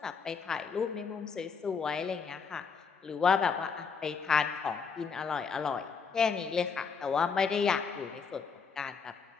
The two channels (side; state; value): right; quieter; 5.7 dB